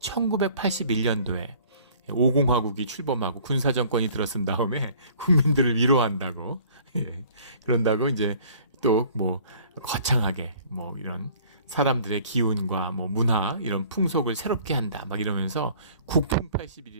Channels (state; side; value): inverted; both; correlation -0.53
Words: 5공화국이 출범하고 군사정권이 들어선 다음에 국민들을 위로한다고, 그런다고 이제 또 거창하게 이런 사람들의 기운과 문화, 이런 풍속을 새롭게 한다 막 이러면서 국풍